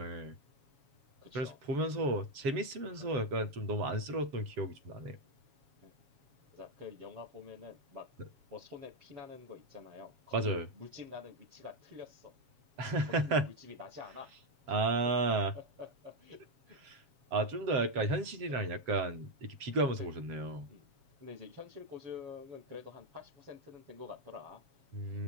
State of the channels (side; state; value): left; late; 7.3 ms